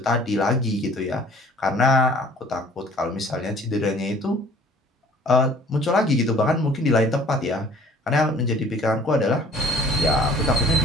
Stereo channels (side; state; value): both; normal; correlation 0.52